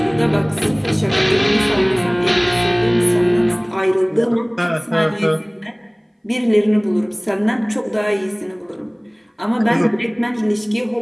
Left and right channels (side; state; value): both; identical; correlation 1.00